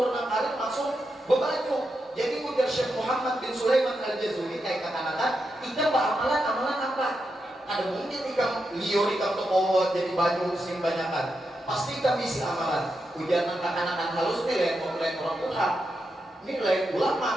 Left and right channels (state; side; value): normal; both; correlation 0.86